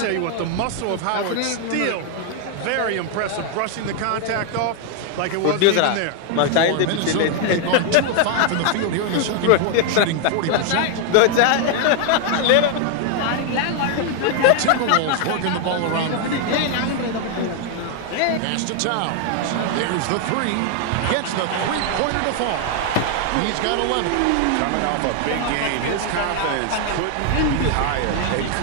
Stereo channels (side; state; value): both; different; correlation 0.00